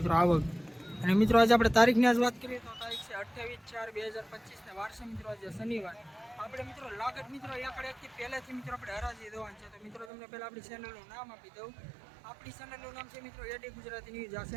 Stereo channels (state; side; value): drops out; left; at 10.1 s